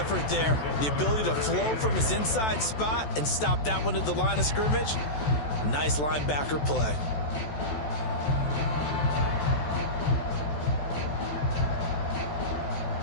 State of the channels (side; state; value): right; late; 14 ms